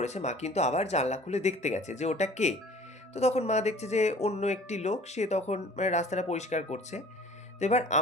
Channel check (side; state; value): both; normal; correlation 0.48